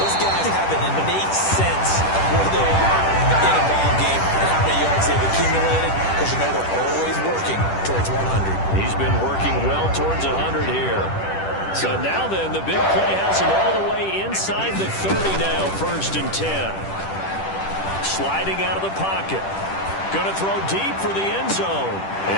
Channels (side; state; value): right; late; 10 ms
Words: Those guys have an innate sense of where they are in a ball game and how many yards they've accumulated because you know they're always working towards 100. He's been working well towards 100 here. So now then, the big play has him all the way inside the 30 now, 1st and 10. Sliding out of the pocket. Going to throw deep for the end zone.